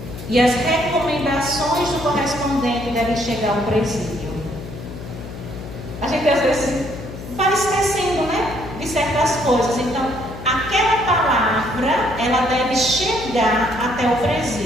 E as recomendações do correspondente devem chegar ao presídio. A gente às vezes vai esquecendo, de certas coisas. Então, aquela palavra, ela deve chegar até o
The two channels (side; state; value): left; noise; hum, 11 dB below the sound